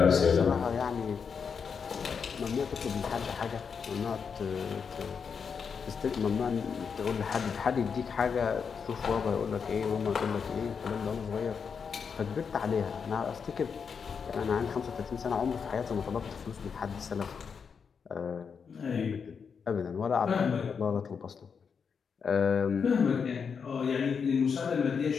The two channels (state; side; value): quieter; right; 6.2 dB